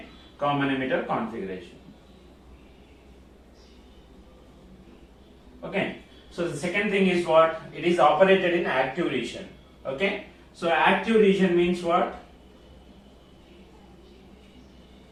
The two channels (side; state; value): both; identical; correlation 1.00